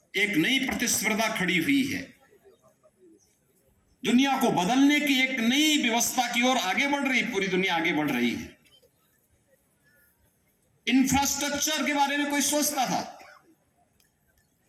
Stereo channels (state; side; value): identical; both; correlation 1.00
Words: एक नई प्रतिस्पर्धा खड़ी हुई है। दुनिया को बदलने की एक नई व्यवस्था की ओर आगे बढ़ रही, पूरी दुनिया आगे बढ़ रही है। इंफ्रास्ट्रक्चर के बारे में कोई सोचता था?